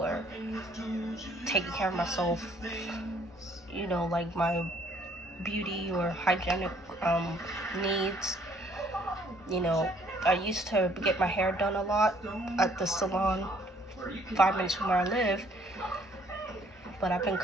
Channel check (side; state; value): both; normal; correlation 0.63